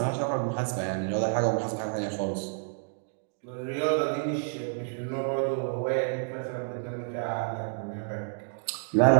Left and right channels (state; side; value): silent; left; digital silence